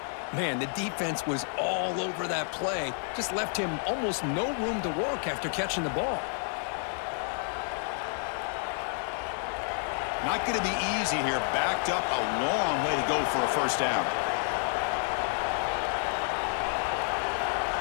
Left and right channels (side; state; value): right; silent; 58 dB below the other